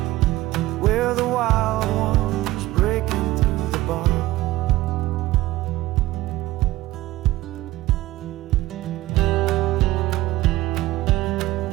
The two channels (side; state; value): left; quieter; 17.1 dB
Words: We're the wild ones breaking through the bars.